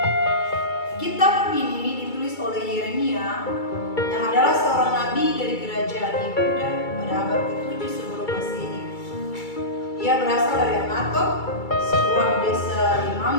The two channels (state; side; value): late; right; 2.3 ms